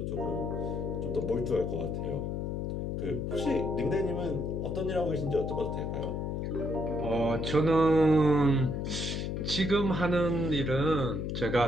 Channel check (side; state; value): left; noise; hum, 2 dB below the sound